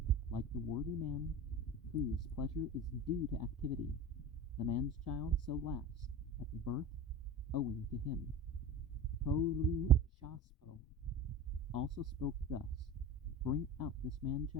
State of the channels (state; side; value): normal; both; correlation 0.32